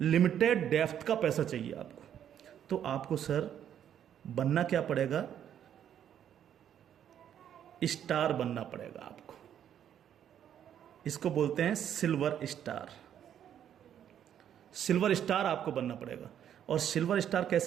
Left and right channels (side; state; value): left; quieter; 9.7 dB